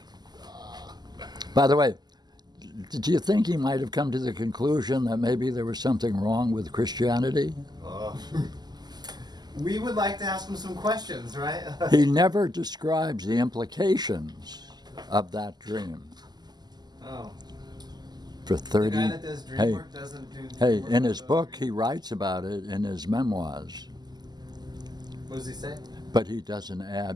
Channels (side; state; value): left; late; 0.20 ms